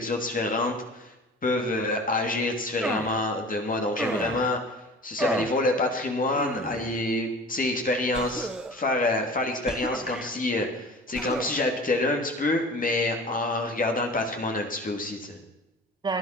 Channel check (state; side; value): normal; both; correlation 0.40